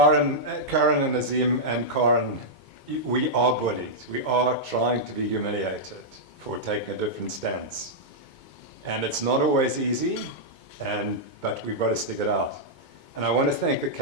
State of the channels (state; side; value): late; right; 2.2 ms